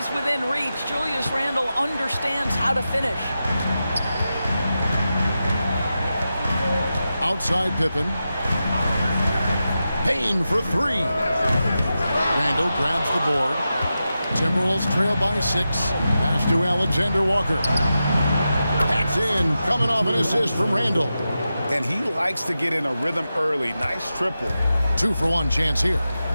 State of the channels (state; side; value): inverted; both; correlation -0.91